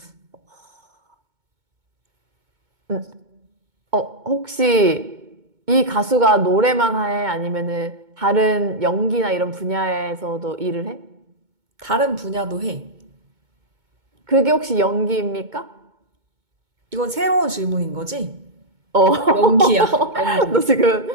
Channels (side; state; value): left; late; 2.2 ms